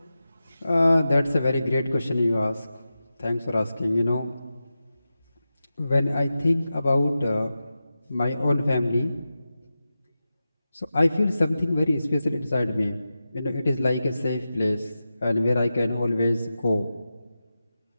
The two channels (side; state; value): both; inverted; correlation -0.92